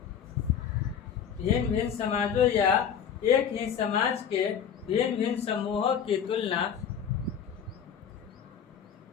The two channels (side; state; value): right; quieter; 8.0 dB